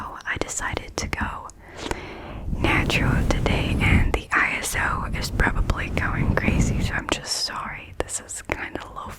decided to go natural today, and the ISO is probably going crazy, so I'm just sorry. This is kind of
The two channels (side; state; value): both; identical; correlation 1.00